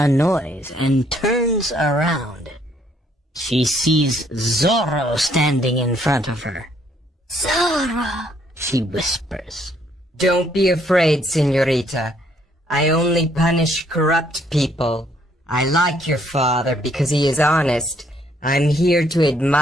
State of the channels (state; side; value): normal; both; correlation 0.68